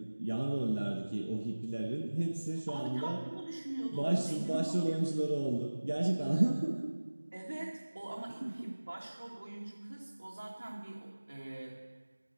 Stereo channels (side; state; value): both; inverted; correlation -1.00